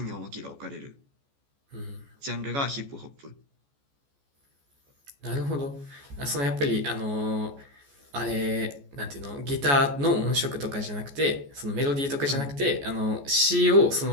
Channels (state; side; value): late; left; 14 ms